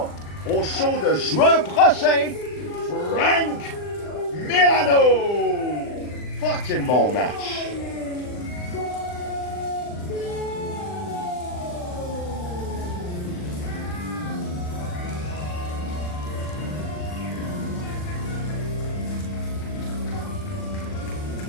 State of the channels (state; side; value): late; right; 39 ms